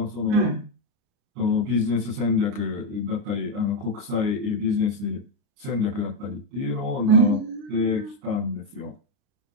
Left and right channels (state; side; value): late; left; 30 ms